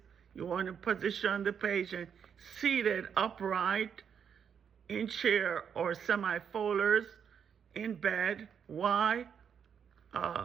you want to position the patient seated upright in chair or semi-folars in bed. Why?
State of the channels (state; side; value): quieter; left; 7.5 dB